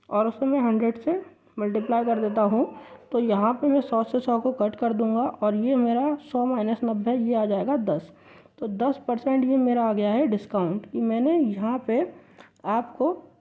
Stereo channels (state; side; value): identical; both; correlation 1.00